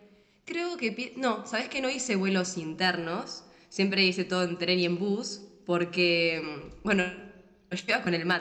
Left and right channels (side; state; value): both; identical; correlation 1.00